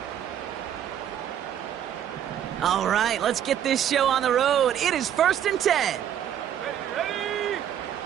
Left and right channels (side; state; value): left; quieter; 9.9 dB